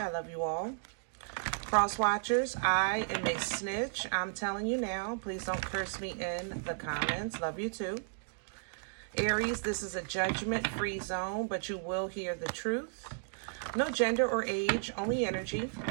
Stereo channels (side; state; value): left; silent; digital silence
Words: love you all. Cross watchers, I am a snitch. I'm telling you now. Please don't curse me in the comments. Love you too. Aries, this is a judgment-free zone, but you will hear the truth. No gender or age, only energy.